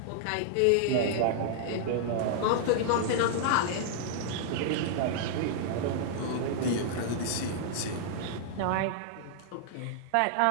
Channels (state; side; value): different; both; correlation -0.01